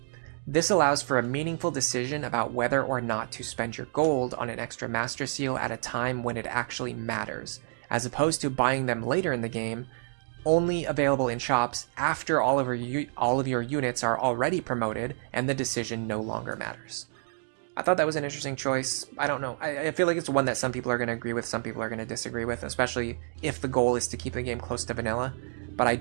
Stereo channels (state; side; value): silent; left; digital silence